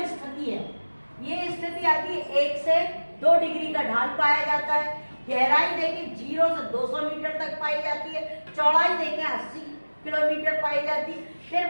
स्थिति है, ये स्थिति आती है 1 से 2 डिग्री का ढाल पाया जाता है। गहराई देखें 0 से 200 मीटर तक पाई जाती है। चौड़ाई देखें 80 किलोमीटर पाई जाती है।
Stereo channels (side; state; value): both; inverted; correlation -1.00